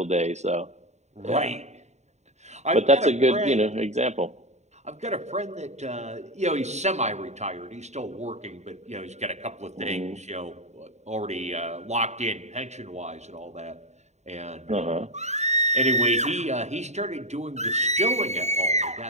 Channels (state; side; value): late; left; 0.33 ms